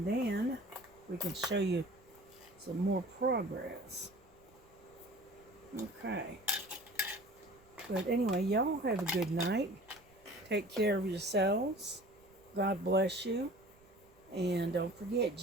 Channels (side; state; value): right; noise; rumble, 29 dB below the sound